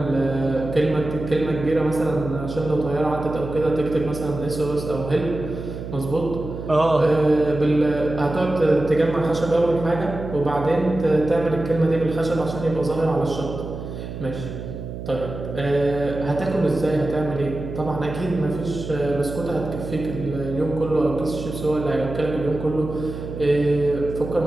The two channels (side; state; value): right; noise; hum, 8 dB below the sound